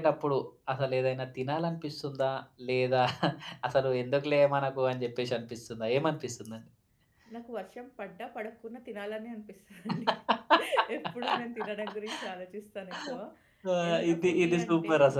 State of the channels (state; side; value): identical; both; correlation 1.00